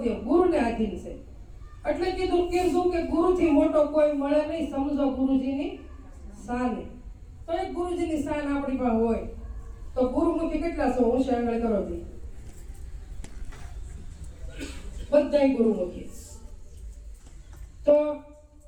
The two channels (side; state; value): both; identical; correlation 1.00